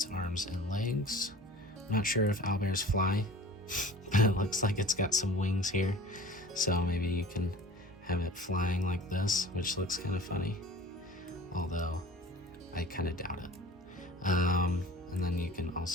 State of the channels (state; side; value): normal; both; correlation 0.42